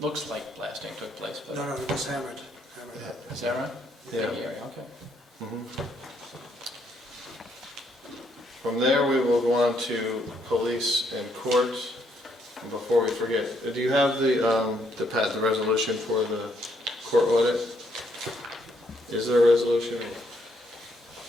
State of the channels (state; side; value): normal; both; correlation 0.72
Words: looks like blasting took place, but No, it was hammered. is that right? Yeah. Okay. Mhm. From there, we will go on to police and court. And before we forget, do you have the resolution for the court audit? Is there a resolution?